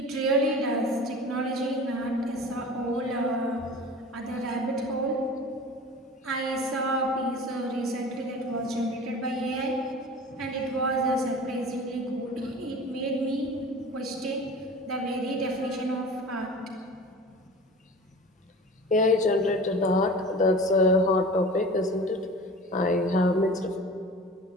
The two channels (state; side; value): normal; both; correlation 0.38